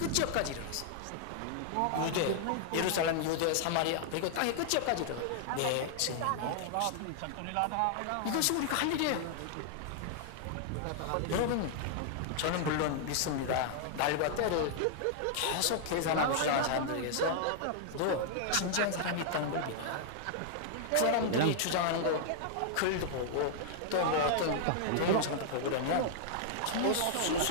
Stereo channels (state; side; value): different; both; correlation -0.01